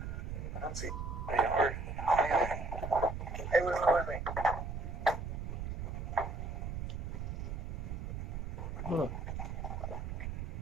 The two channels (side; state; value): right; noise; rumble, 4 dB below the sound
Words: don't see any heart. Hey, wait.